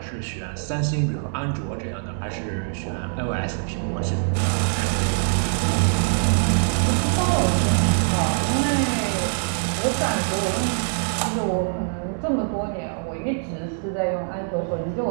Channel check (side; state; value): left; silent; digital silence